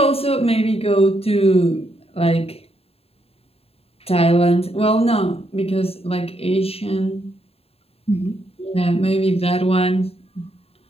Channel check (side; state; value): right; late; 0.29 ms